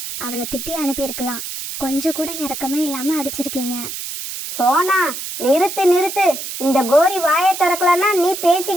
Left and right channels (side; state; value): right; noise; hiss, 7 dB below the sound